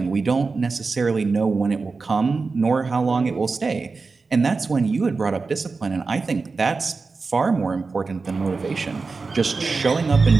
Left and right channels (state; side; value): quieter; left; 4.3 dB